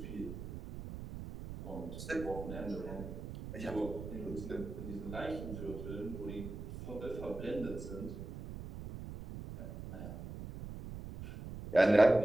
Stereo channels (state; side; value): noise; right; rumble, 9 dB below the sound